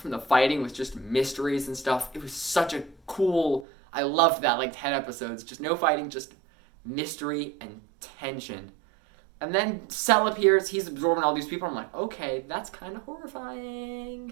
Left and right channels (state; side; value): drops out; left; at 3.7 s